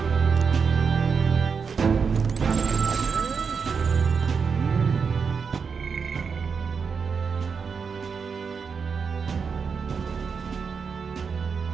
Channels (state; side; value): quieter; left; 5.8 dB